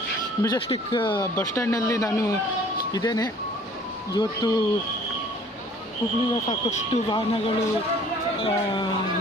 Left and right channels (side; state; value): both; normal; correlation 0.53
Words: Majestic bus ಸ್ಟ್ಯಾಂಡ್ನಲ್ಲಿ ನಾನು ಇದ್ದೇನೆ. ಇವತ್ತು ಹುಬ್ಳಿಯ ಸಾಕಷ್ಟು ವಾಹನಗಳು